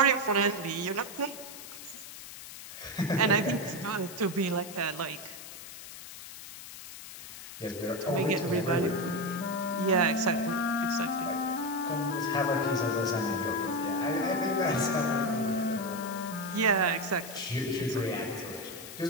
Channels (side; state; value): left; noise; hiss, 13 dB below the sound